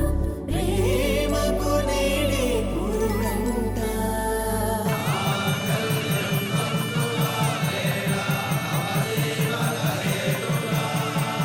ప్రేమకు నేడే పురుడంట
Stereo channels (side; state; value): both; identical; correlation 1.00